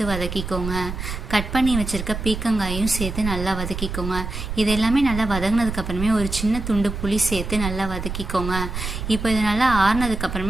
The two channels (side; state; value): right; noise; rumble, 6 dB below the sound